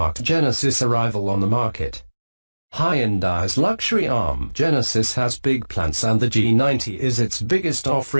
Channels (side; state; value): both; inverted; correlation -1.00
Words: Genesis' arrival on the market. Hyundai's luxury arm, Genesis, has big plans and the G90 is its biggest